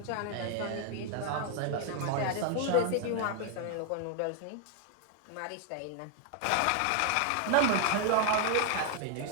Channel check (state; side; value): different; both; correlation 0.00